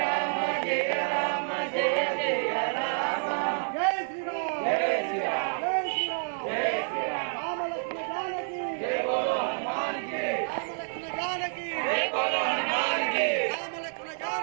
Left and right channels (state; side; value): silent; left; 59 dB below the other